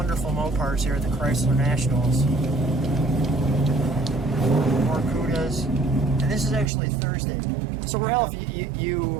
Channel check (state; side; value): drops out; left; at 6.7 s